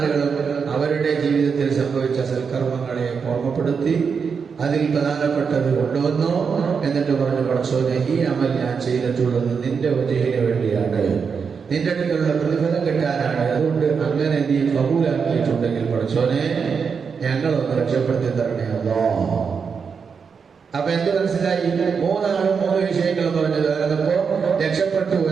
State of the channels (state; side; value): quieter; left; 5.9 dB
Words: അവരുടെ ജീവിതത്തിൽ സംഭവിച്ച സൽക്കർമ്മങ്ങളെ ഓർമ്മപ്പെടുത്തി അതിൽ പ്രധാനപ്പെട്ടത് കൊണ്ടുവന്നു. എന്നിട്ട് പറഞ്ഞു, പടച്ചോനെ, ഈ അമൽ ഞാൻ ചെയ്തിട്ടുള്ളത് നിന്റെ വജഹിന് വേണ്ടിയാണ്, നിന്റെ അടുക്കലുള്ള പ്രതിഫലം കിട്ടാനാണ്. അതുകൊണ്ട് അങ്ങനെ നീ കബൂലാക്കിയിട്ടുണ്ടെങ്കിൽ പടച്ചോനെ ഞങ്ങളൊന്ന് രക്ഷപ്പെടുത്തി തരണേ അല്ലാ. അപ്പൊ എന്ത് മനസ്സിലായി? 3 ആളും 3 വിഷയങ്ങളും പറഞ്ഞത് അതപ്പോ രക്ഷപ്പെട്ടു